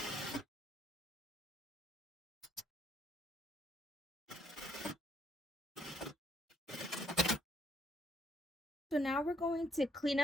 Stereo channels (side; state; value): both; normal; correlation 0.70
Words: So now we're going to clean